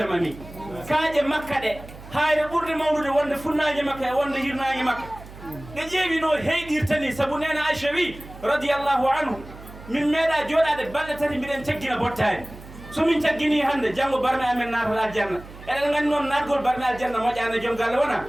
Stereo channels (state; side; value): noise; right; hum, 17 dB below the sound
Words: kaaƴe makka ɗe hayre ɓurde mawnude wonde funnaji makka e wonde hirnaji makka ɗe ƴeewi no heyɗirtani saabu nena aicha wi radiallahu anhu min meeɗa jooɗade balɗe tati mbiɗen caggina bottani somin caggini hande janggo barme amen naata aljanna eɗen gandi noon natgol barme aljanna moƴƴani joom galle wona